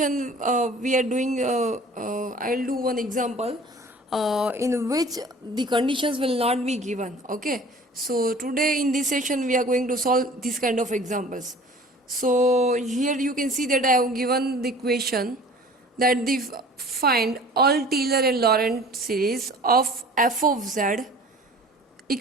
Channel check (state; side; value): normal; both; correlation 0.46